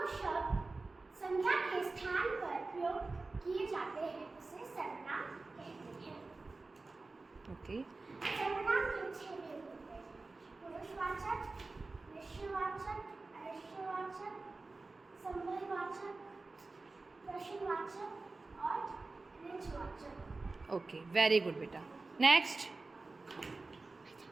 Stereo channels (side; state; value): left; quieter; 3.5 dB